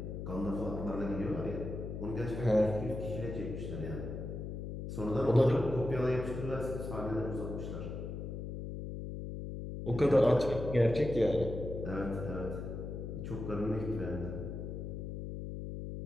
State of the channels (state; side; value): noise; left; hum, 6 dB below the sound